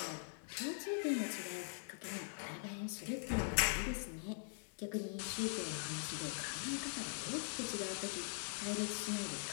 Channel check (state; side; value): silent; right; digital silence